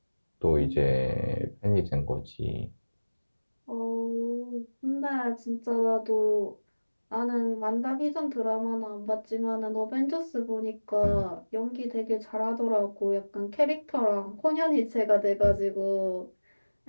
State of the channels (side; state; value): both; inverted; correlation -1.00